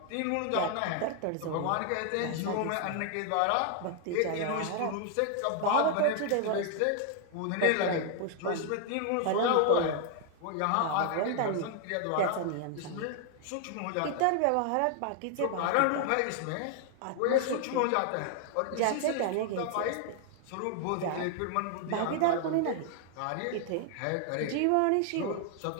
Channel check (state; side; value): different; both; correlation 0.00